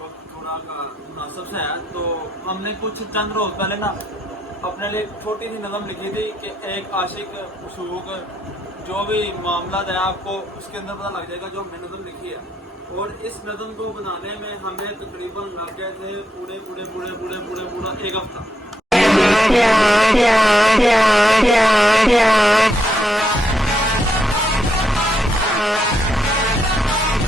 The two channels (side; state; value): both; normal; correlation 0.79